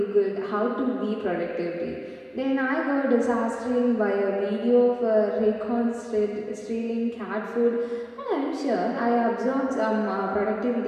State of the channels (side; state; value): both; identical; correlation 1.00